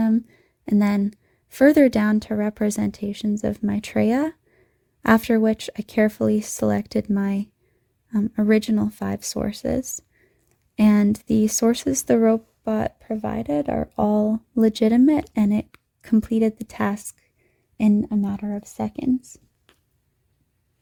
and then further down to representations of Maitreya, after which I carefully selected my original 5 sources. And the sources the robot provided are all legitimate, and it completed the task in a matter of seconds.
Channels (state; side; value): identical; both; correlation 1.00